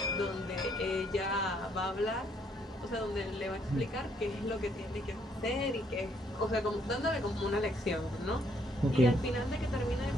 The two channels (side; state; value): both; normal; correlation 0.69